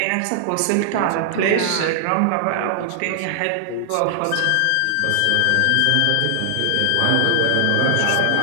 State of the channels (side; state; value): both; different; correlation 0.00